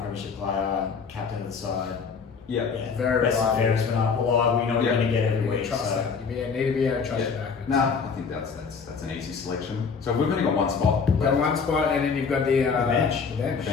premiership player, captain of the side. Yeah. Very best and fairest went up. Well, we know we're going to get every week. Trust So. that. You need to be able to trust your back. No, I think that's an easy selection. So we've only got one spot. You've got one spot, and then you've got the bench. The bench.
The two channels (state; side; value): quieter; right; 5.6 dB